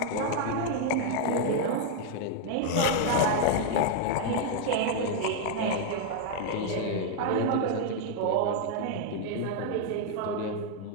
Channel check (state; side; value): different; both; correlation 0.00